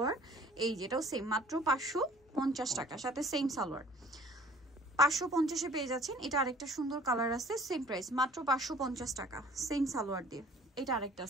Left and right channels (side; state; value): both; normal; correlation 0.52